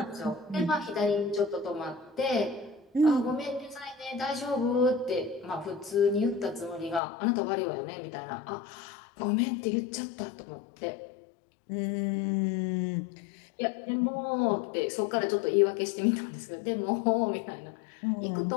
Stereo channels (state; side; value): drops out; right; at 7.0 s